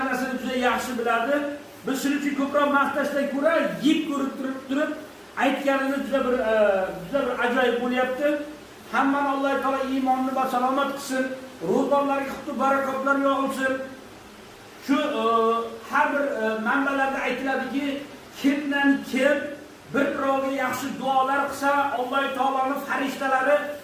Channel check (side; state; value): both; identical; correlation 1.00